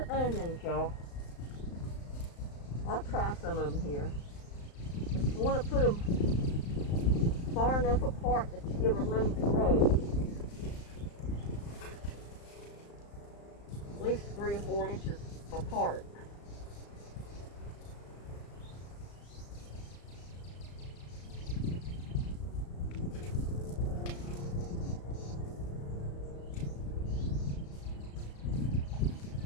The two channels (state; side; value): late; right; 35 ms